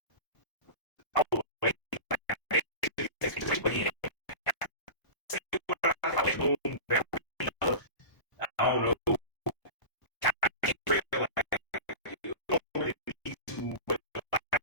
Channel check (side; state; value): right; late; 1.0 ms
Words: oh, wait, I don't know. I can't feel like you don't really need to, but